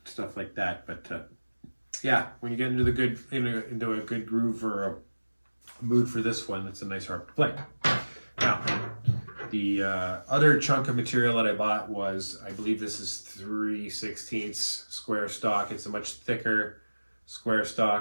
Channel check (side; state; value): both; inverted; correlation -1.00